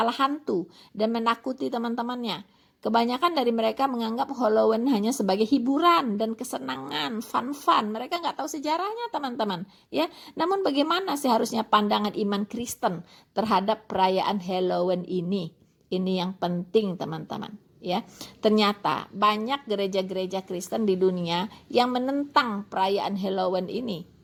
hantu dan menakuti teman-temannya. Kebanyakan dari mereka menganggap Halloween hanya sebagai hiburan dan kesenangan, fun-fun. Mereka nggak tahu sejarahnya, teman-teman. Ya, namun bagaimana seharusnya pandangan iman Kristen terhadap perayaan Halloween ini? Ini yang penting, teman-teman. Ya, ternyata banyak gereja-gereja Kristen di dunia yang menentang perayaan Halloween ini.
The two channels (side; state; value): both; identical; correlation 1.00